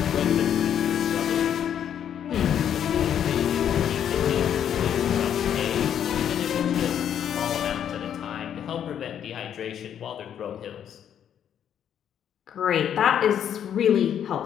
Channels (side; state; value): right; quieter; 9.3 dB